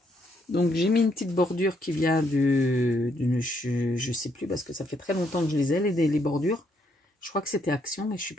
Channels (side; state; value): both; normal; correlation 0.73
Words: Donc, j'ai mis une petite bordure qui vient je ne sais plus parce que ça fait très longtemps que je les ai, les bordures. Je crois que c'était Action, mais je suis